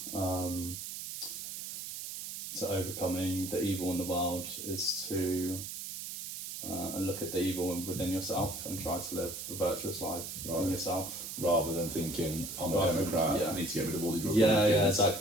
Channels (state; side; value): noise; right; hiss, 7 dB below the sound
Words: overcoming the evil in the world is to look at the evil within yourself and try to live a virtuous life in yourself. Rather than thinking, I'm a Democrat, I need to get rid of all these Republicans. Yeah,